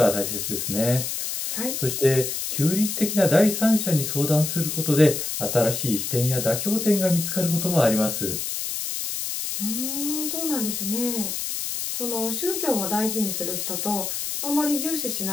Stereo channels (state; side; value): noise; left; hiss, 3 dB below the sound